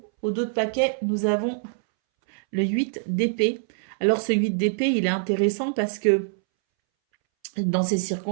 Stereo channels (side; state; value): left; silent; 62 dB below the other